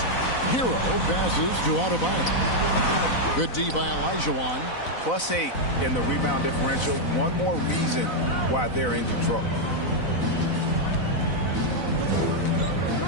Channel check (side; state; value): right; late; 4.0 ms